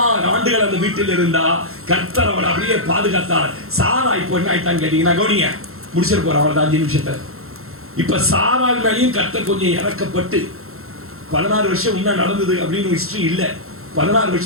ஆண்டுகள் அந்த வீட்டில் இருந்தா, கர்த்தர் அவளை அப்படியே பாதுகாத்தார். சாரா இப்போ என்ன ஆயிட்டான்னு கேட்டீங்கன்னா, கவனிங்க, முடிச்சிட்டு போறேன் அவ்வளவுதான் 5 நிமிஷத்துல. இப்ப சாராள் மேலேயும் கர்த்தர் கொஞ்சம் இறக்கப்பட்டு 16 வருஷம் முன்ன நடந்தது அப்படின்னு ஹிஸ்டரி இல்ல. 16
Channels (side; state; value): left; late; 0.62 ms